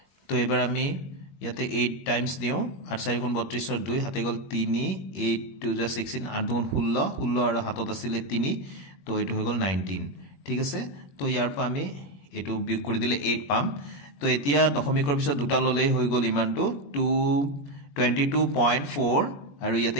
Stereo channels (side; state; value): right; late; 21 ms